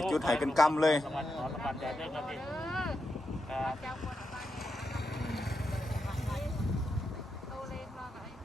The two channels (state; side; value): normal; both; correlation 0.86